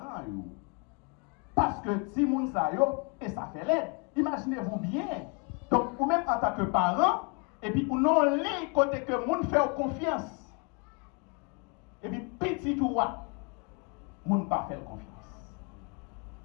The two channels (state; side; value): quieter; right; 32.3 dB